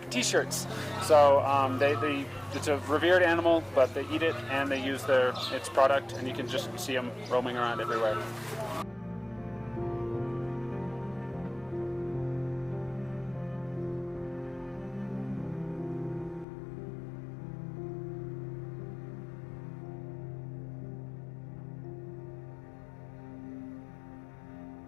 T-shirts. So it's a revered animal, but they eat it and they use its product, and you can just see them roaming around everywhere.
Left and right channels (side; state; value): right; drops out; at 16.4 s